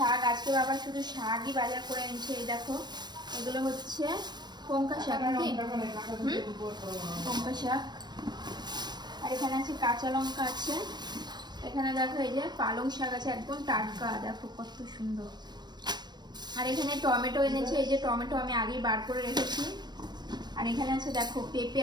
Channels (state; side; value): late; left; 0.21 ms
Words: আজকে বাবা শুধু শাকই বাজার করে এনেছে। এই দেখো এগুলো হচ্ছে লঙ্কা শাক, লঙ্কা শাক। আর এখানে আছে কাঁচা লঙ্কা আছে। এখানে দেখো এই যে পালং শাক আছে, একদম টাটকা, দেখো কত সুন্দর। আর এখানে টমেটো এনেছে, এই যে টমেটো আমি আগেই বার করে রেখেছি। আর এখানে আছে দেখো পেঁপে